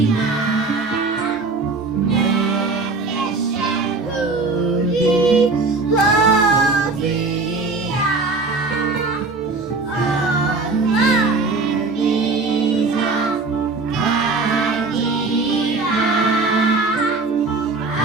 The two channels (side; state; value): left; quieter; 3.7 dB